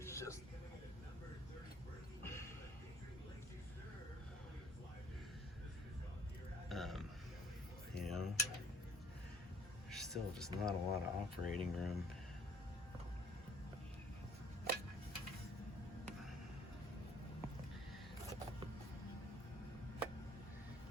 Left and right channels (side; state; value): both; normal; correlation 0.56